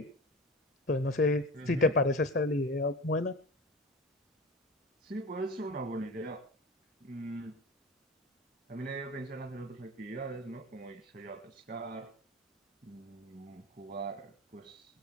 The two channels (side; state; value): both; normal; correlation 0.32